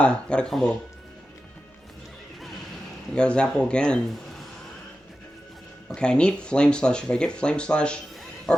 got a combo. I got a Zapple again. Okay, I need Flame Slash. If I get Flame Slash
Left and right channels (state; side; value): normal; both; correlation 0.92